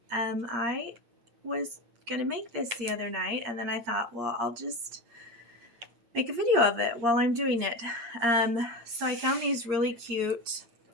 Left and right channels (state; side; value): late; left; 8.6 ms